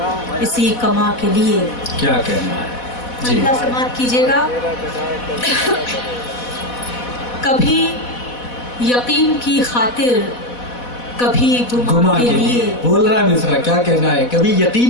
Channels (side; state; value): right; late; 4.1 ms